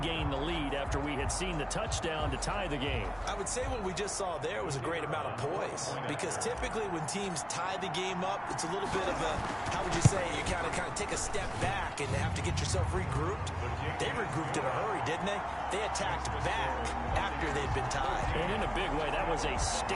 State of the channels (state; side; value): identical; both; correlation 1.00